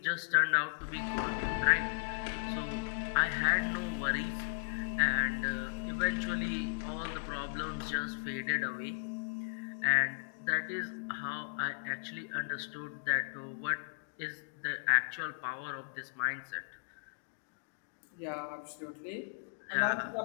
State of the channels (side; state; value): right; silent; digital silence